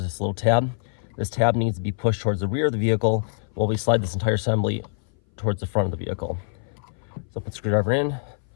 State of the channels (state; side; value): silent; right; 59 dB below the other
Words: this little tab. This tab needs to be pushed towards the rear of the vehicle while we slide this entire assembly towards the front of the vehicle. So put the screwdriver in,